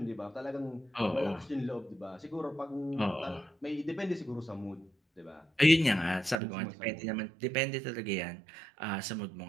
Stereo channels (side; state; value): left; drops out; at 6.4 s